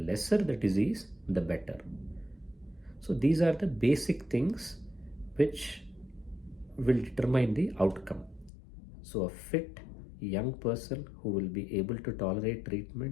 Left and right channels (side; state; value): right; drops out; at 8.5 s